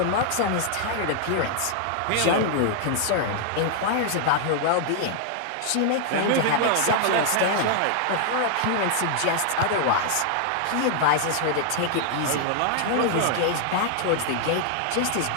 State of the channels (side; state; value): both; different; correlation -0.01